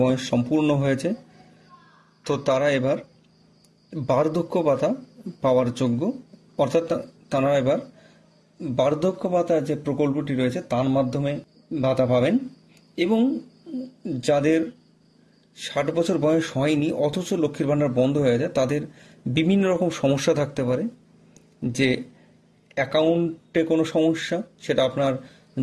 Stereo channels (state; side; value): identical; both; correlation 1.00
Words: বয়স সম্পূর্ণ হয়েছে তো তারা এবার বার্ধক্য ভাতা পাওয়ার যোগ্য, অর্থাৎ তারা এবার বার্ধক্য ভাতা যে প্রকল্পটি রয়েছে তার মাধ্যমে ভাতা পাবেন। এবং যাদের 60 বছর বয়স হয়নি অথচ লক্ষ্মীর ভাণ্ডার বন্ধ হয়ে যায়, তাদের বিভিন্ন রকম সমস্যা থাকতে পারে। যে অ্যাকাউন্টে কোনো সমস্যা, সেটা আপনার